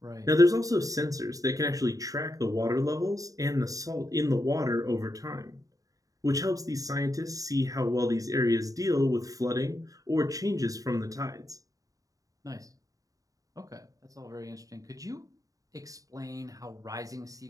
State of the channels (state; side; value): late; left; 0.17 ms